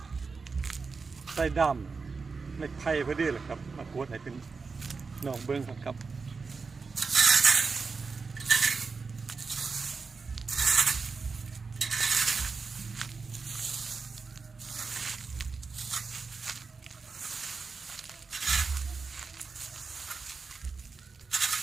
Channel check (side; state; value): left; quieter; 4.7 dB